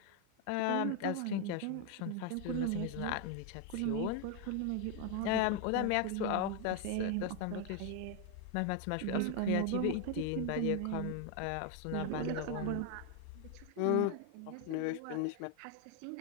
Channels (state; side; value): different; both; correlation 0.01